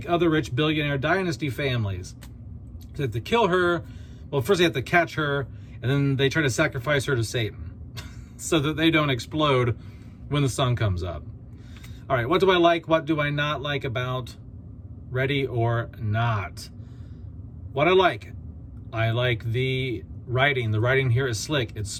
other rich billionaire dynasty families. So they have to kill her. Well, first they have to catch her, and then they try to sacrifice her to Satan so that they don't explode when the sun comes up. All right, what do I like? What do I not like about Ready or Not? What I like the writing. The writing here is slick. It's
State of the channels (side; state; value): both; identical; correlation 1.00